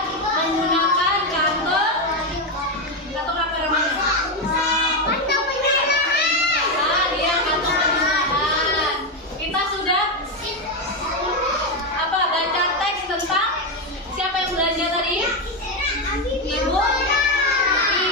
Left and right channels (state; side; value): normal; both; correlation 0.08